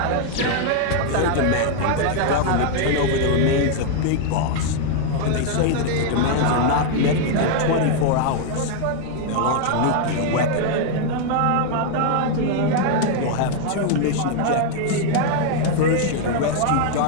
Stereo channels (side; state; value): both; different; correlation 0.00